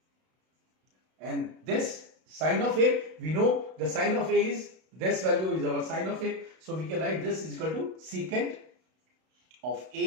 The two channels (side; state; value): left; late; 32 ms